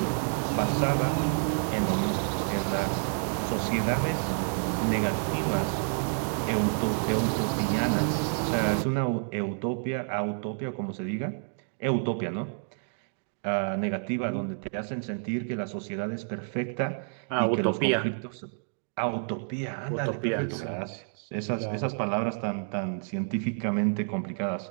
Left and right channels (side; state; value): left; silent; digital silence